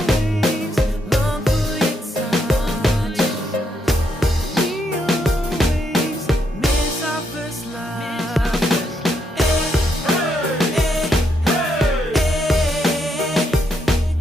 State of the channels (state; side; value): normal; both; correlation 0.77